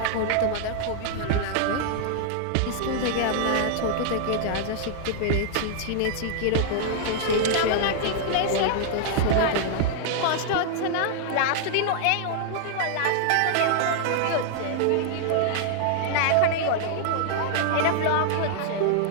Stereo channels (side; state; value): both; different; correlation 0.00